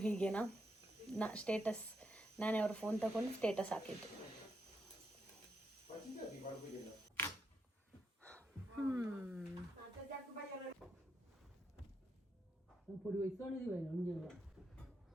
ಹೀಗೇನಾ? ಸ್ಟೇಟಸ್ ನಾನೇ ಅವ್ರ ಫೋನ್ ತಗೊಂಡು ಸ್ಟೇಟಸ್ ಹಾಕಿದ್ದು.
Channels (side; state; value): both; normal; correlation 0.81